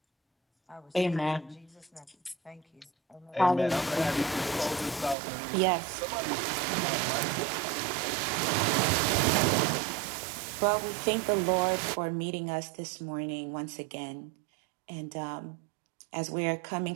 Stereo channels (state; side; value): drops out; left; at 5.2 s